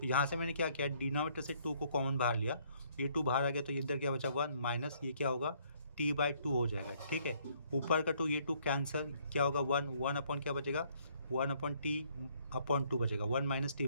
यहाँ से मैंने क्या किया, डिनोमिनेटर से 2 को कॉमन बाहर लिया, ये 2 बाहर आ गया, तो इधर क्या बचा 1 माइनस ये क्या होगा, t/2 हो जाएगा, ठीक है। ऊपर का 2, ये 2 कैंसिल, क्या होगा 1 अपॉन क्या बचेगा, 1/t/2 बचेगा, 1 माइनस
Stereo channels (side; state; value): both; inverted; correlation -0.66